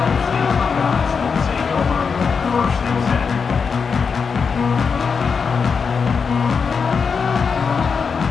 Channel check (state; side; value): quieter; right; 5.7 dB